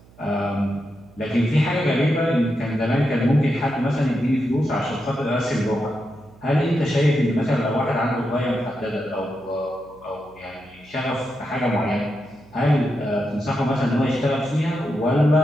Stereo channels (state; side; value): noise; right; hum, 26 dB below the sound